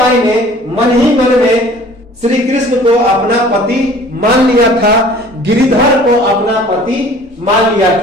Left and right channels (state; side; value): normal; both; correlation 0.49